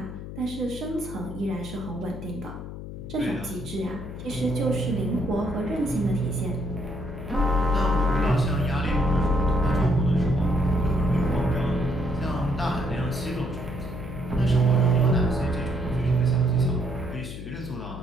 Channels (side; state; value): left; noise; hum, 10 dB below the sound